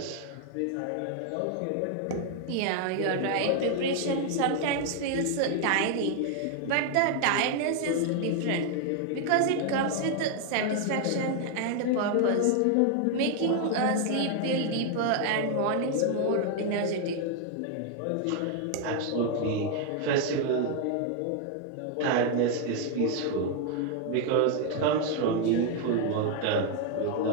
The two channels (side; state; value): both; different; correlation 0.00